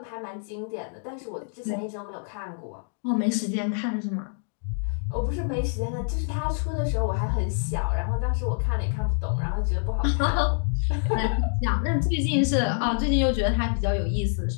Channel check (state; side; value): silent; right; 61 dB below the other